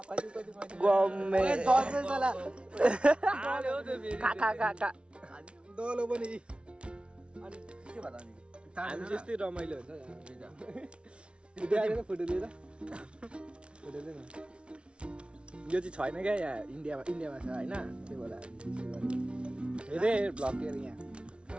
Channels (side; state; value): left; late; 0.058 ms